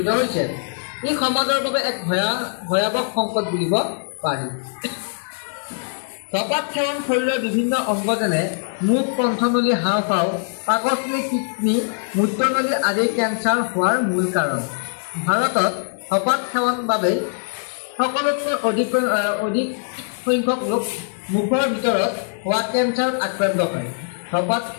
হৈছে। ই সমাজৰ বাবে এক ভয়াৱহ সংকট বুলিব পাৰি। ধপাত সেৱন শৰীৰৰ বিভিন্ন অংগ যেনে মুখ, কণ্ঠনলী, হাওঁফাওঁ, পাকস্থলী, কিডনী, মূত্ৰনলী আদিৰ কেঞ্চাৰ হোৱাৰ মূল কাৰণ। ভাৰতত ধপাত সেৱন বাবে সকলোতকৈ অধিক সংখ্যক লোক মুখৰ ভিতৰত হোৱা কেঞ্চাৰত আক্ৰান্ত হয়। ধপাত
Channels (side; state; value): right; silent; 59 dB below the other